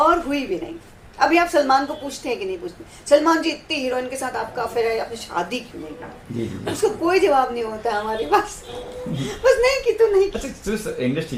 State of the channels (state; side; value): identical; both; correlation 1.00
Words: और हुई भी नहीं। अभी आप सलमान को पूछते हैं कि नहीं पूछते, सलमान जी इतनी हीरोइन के साथ आपका अफेयर है, आपने शादी क्यों नहीं की? उसका कोई जवाब नहीं होता है हमारे पास। बस नहीं की तो नहीं की। अच्छा, इंडस्ट्री